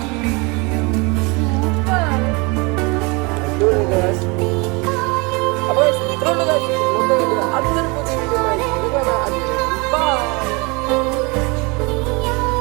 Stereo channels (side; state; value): left; quieter; 28.1 dB